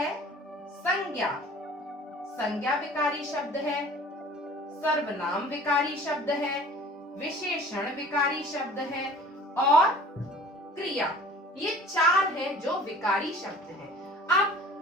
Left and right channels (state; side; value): normal; both; correlation 0.46